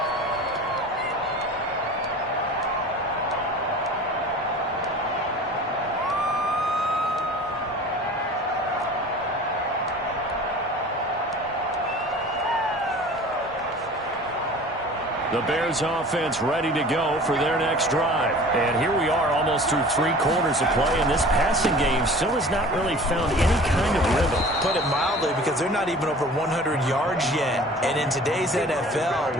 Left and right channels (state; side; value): normal; both; correlation 0.43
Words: The Bears offense ready to go for their next drive. And here we are almost through 3 quarters of play, and this passing game still has not really found any kind of rhythm. Put it mildly, because they're not even over 100 yards yet. And in today's NFL,